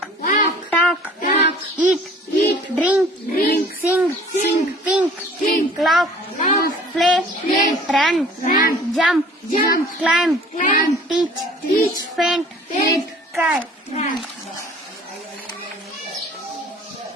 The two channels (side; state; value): both; normal; correlation 0.50